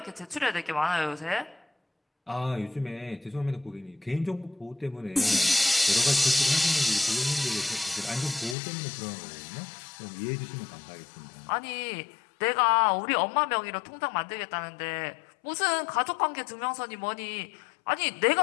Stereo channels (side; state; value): right; drops out; at 8.6 s